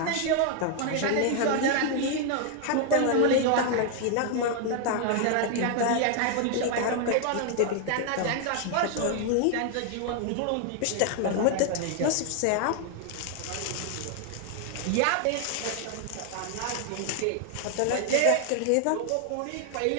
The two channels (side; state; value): both; different; correlation 0.00